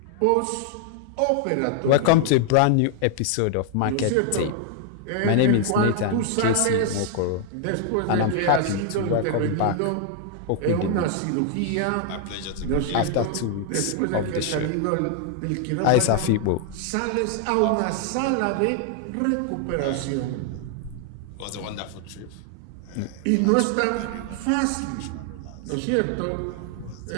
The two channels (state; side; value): different; both; correlation 0.00